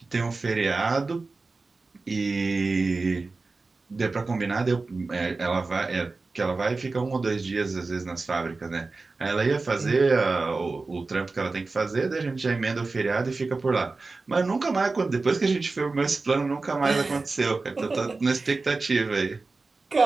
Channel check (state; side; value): quieter; left; 3.8 dB